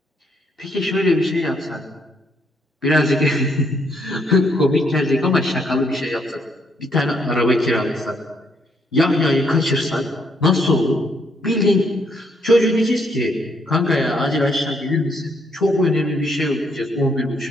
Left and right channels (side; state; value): both; normal; correlation 0.72